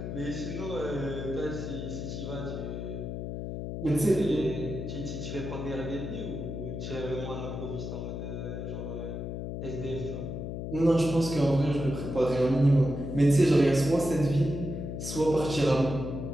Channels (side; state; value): left; noise; hum, 5 dB below the sound